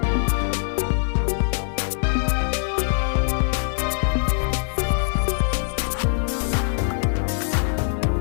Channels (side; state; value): right; silent; digital silence